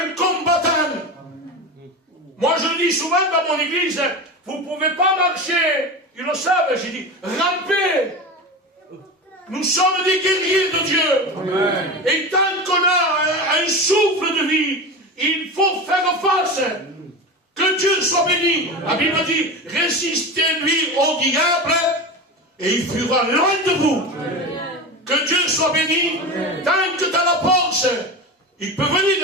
combattant. Moi je le dis souvent dans mon église, vous ne pouvez pas marcher, ils le savent, j'ai dit, ramper. Nous sommes des guerriers de Dieu. Amen. Et tant qu'on a un souffle de vie, il faut faire face. Que Dieu soit béni. La Bible dit, résistez-lui au diable et il fuira loin de vous. Amen. Que Dieu soit béni. Amen. Tant que tu as la force, il peut venir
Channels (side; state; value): both; normal; correlation 0.25